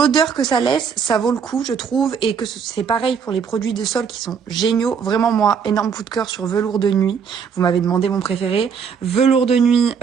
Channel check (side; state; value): left; quieter; 6.7 dB